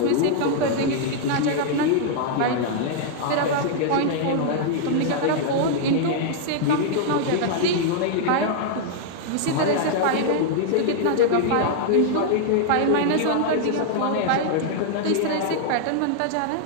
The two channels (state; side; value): different; both; correlation -0.01